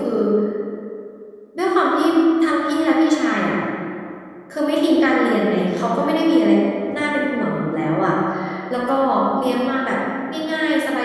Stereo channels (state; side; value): identical; both; correlation 1.00